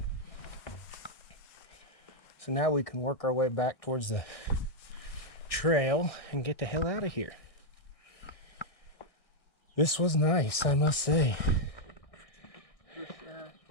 So now we can work our way back towards the trail and get the hell out of here. This was nice, I must say. For sure.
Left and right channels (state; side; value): late; right; 1.6 ms